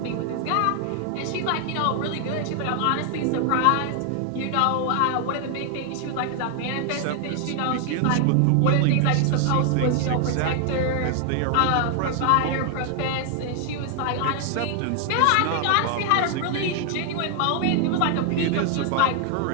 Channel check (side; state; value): both; different; correlation 0.00